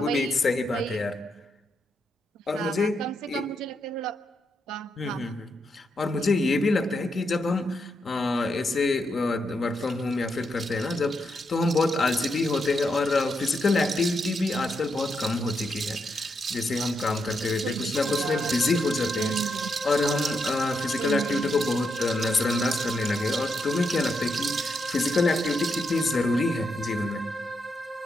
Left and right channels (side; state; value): both; normal; correlation 0.82